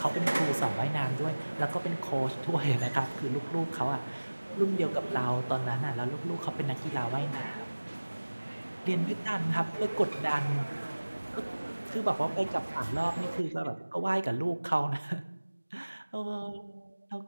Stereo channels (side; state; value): both; inverted; correlation -1.00